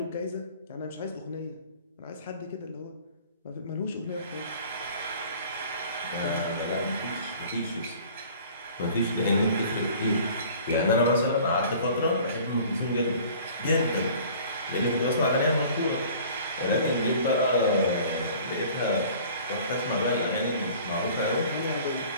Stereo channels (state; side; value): inverted; both; correlation -0.48